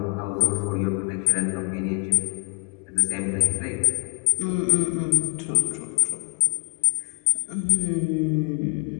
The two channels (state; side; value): quieter; right; 35.5 dB